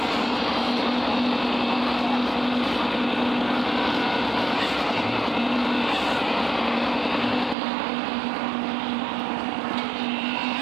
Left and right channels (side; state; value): left; drops out; at 7.6 s